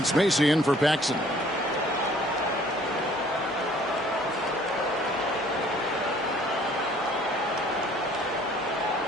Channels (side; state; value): both; normal; correlation 0.57